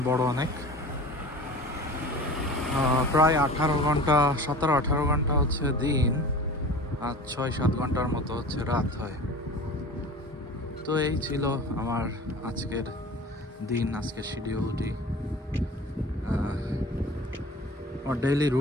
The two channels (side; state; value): both; normal; correlation 0.39